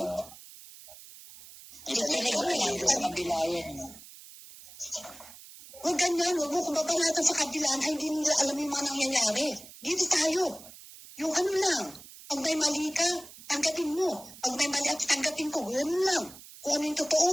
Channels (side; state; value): right; noise; hiss, 18 dB below the sound